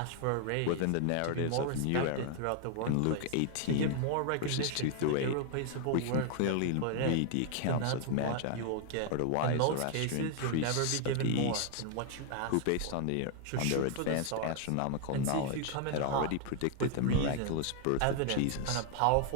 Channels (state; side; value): different; both; correlation 0.00